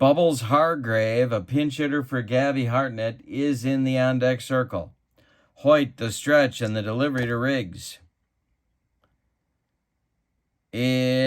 Hargrave, a pinch hitter for Gabby Hartnett, is in the on-deck circle. Hoyt, the stretch, and the delivery to Riggs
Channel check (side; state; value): both; identical; correlation 1.00